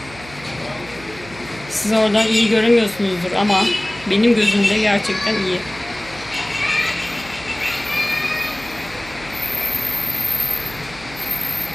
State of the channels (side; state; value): right; noise; hum, 18 dB below the sound